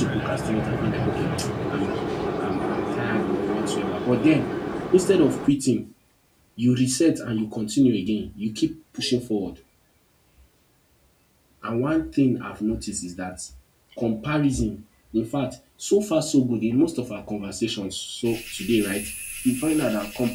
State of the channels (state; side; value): identical; both; correlation 1.00